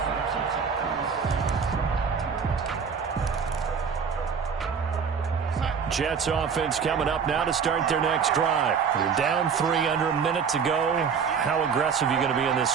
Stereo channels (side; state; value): left; quieter; 6.3 dB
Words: Jets offense coming up now to start their next drive. You're down 3 under a minute to go. How aggressive are you going to be in this